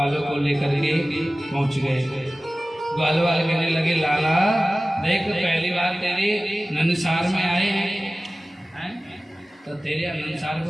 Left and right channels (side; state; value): both; normal; correlation 0.97